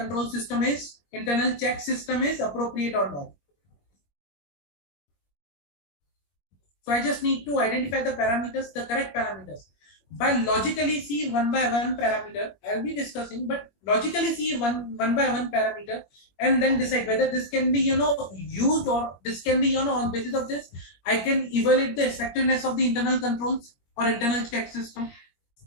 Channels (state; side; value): late; right; 21 ms